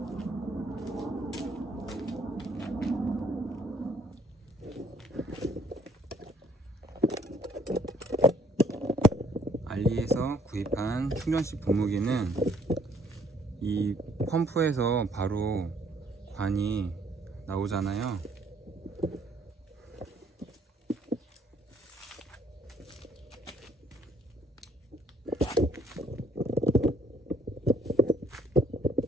알리에서 구입한 충전식 분무기는 이 펌프에서 바로 관이 나오잖아요.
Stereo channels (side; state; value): both; normal; correlation 0.64